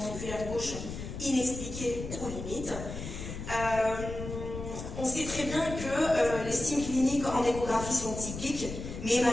gauche inexpliquée ou limite. On sait très bien que les signes cliniques en échographie sont typiques, mais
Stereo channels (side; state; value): left; noise; rumble, 8 dB below the sound